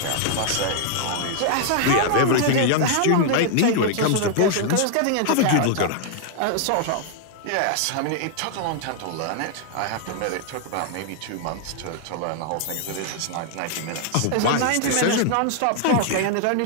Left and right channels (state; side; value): different; both; correlation 0.00